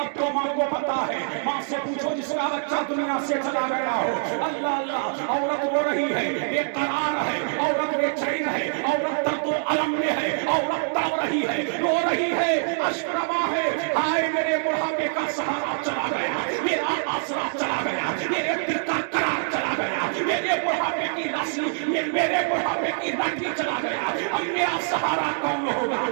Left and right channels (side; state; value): left; silent; digital silence